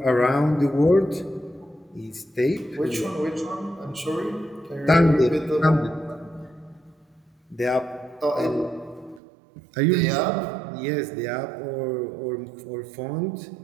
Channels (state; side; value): drops out; left; at 9.2 s